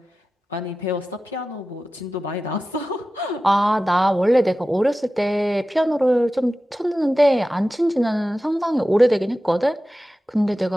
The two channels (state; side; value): normal; both; correlation 0.94